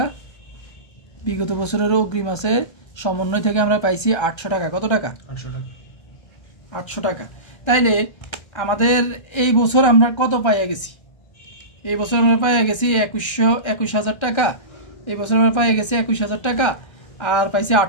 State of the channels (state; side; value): late; right; 1.3 ms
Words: বিগত বছরের অগ্রিম আছে সমন্বয় থেকে আমরা পাইছি 800 টাকা। কত টাকা? 800 টাকা। তাইলে আমাদের এই বছর আমরা কত পাইয়া গেছি? এই বছর আমরা পাইয়া গেছি 21,000 টাকা। এই বছর আমরা পাইয়া গেছি 21,000 টাকা, আর পাইছি